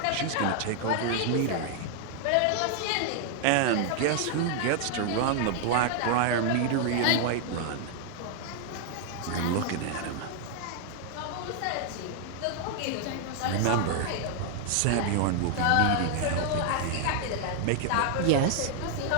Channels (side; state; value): both; different; correlation 0.00